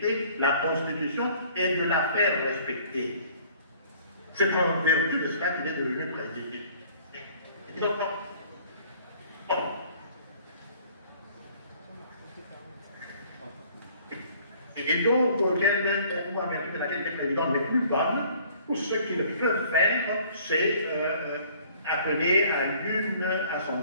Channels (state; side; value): inverted; both; correlation -0.55